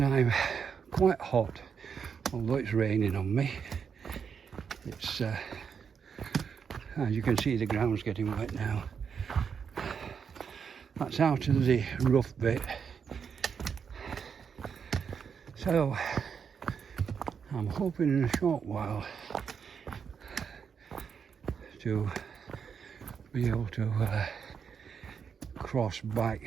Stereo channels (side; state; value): left; quieter; 6.7 dB